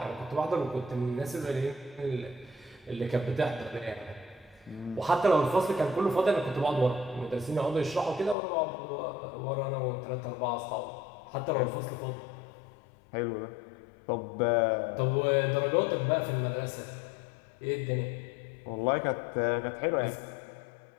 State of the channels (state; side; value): drops out; right; at 8.3 s